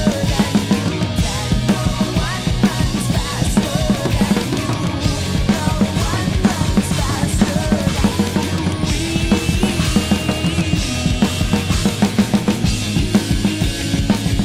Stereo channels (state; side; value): identical; both; correlation 1.00